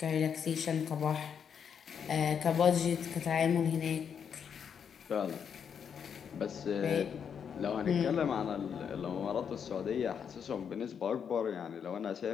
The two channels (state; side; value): quieter; right; 7.4 dB